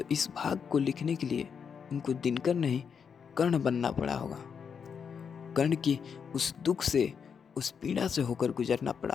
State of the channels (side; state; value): right; quieter; 6.7 dB